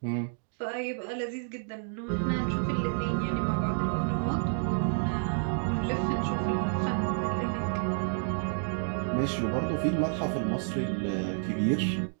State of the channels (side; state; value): left; silent; 57 dB below the other